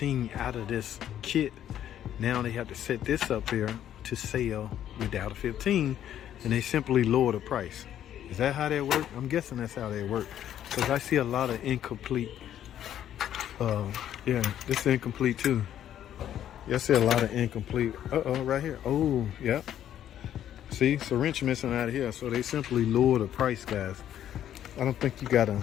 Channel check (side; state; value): right; quieter; 10.8 dB